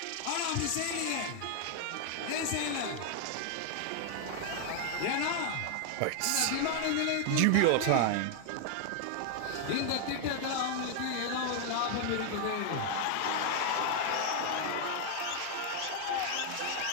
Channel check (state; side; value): different; both; correlation 0.00